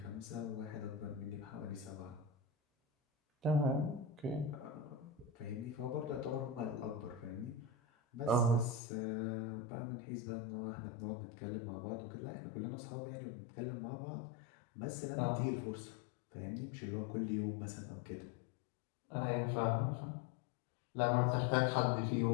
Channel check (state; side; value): drops out; right; at 8.8 s